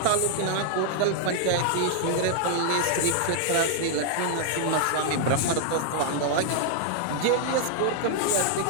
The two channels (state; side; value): different; both; correlation 0.00